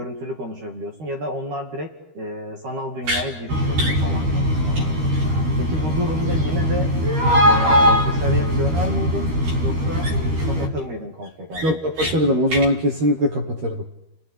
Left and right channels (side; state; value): left; late; 13 ms